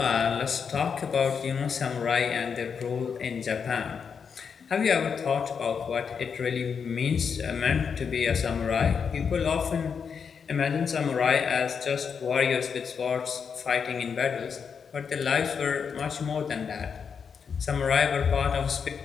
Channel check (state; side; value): quieter; right; 6.4 dB